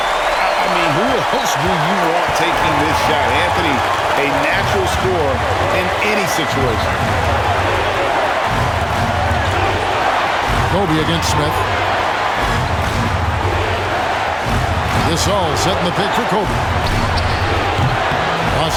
mean, who else do you want taking this shot? Anthony, a natural scorer in any situation. Kobe against Smith. Gasol setting the pick for Kobe. Los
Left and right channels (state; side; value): identical; both; correlation 1.00